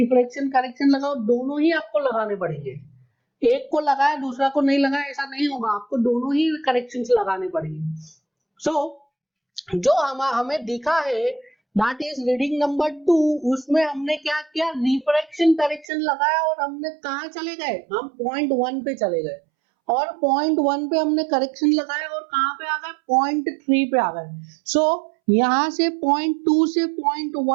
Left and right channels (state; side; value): drops out; left; at 15.9 s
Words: करेक्शन लगाओ, दोनों ही आपको लगाने पड़ेंगे। एक को लगाया दूसरा को नहीं लगाया, ऐसा नहीं होगा, आपको दोनों ही करेक्शंस लगाने पड़ेंगे। सो जो हमें दिखा है दैट इज रीडिंग नंबर 2, उसमें हमने क्या किया, रिफ्रैक्शन करेक्शन लगाया और हमने कहाँ चले गए, हम पॉइंट 1 पे चले गए और पॉइंट 1 पे हमने करेक्शन लगाया और कहाँ पे आ गए, पॉइंट 3 पे आ गए। सो यहाँ से पॉइंट 2 से पॉइंट